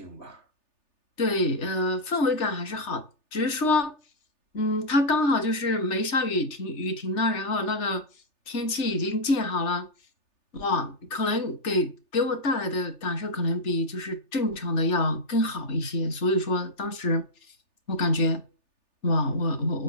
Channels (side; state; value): right; late; 3.4 ms